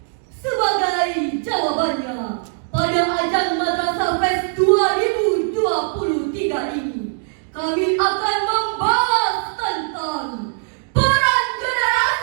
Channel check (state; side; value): silent; left; digital silence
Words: Sebagai jawabannya, pada ajang Madrasah Fest 2023 ini, kami akan membahas tentang peran